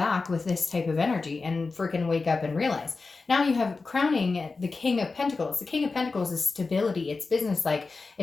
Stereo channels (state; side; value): quieter; right; 4.0 dB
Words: with this type of energy and freaking wake up and realize. Now you have crowning the King of Pentacles. The King of Pentacles is stability. It's business-like.